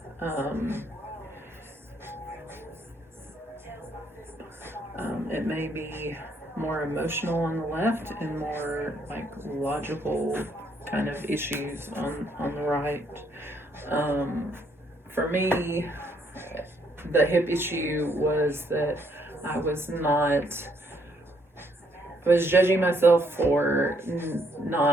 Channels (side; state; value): both; normal; correlation 0.70